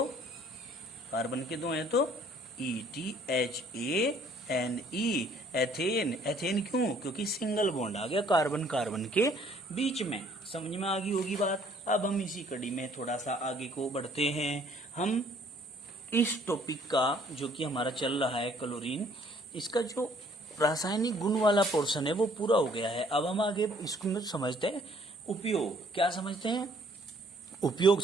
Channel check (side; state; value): both; normal; correlation 0.60